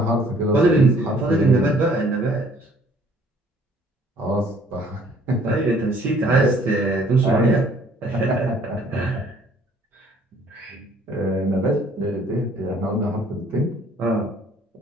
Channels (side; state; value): both; normal; correlation 0.58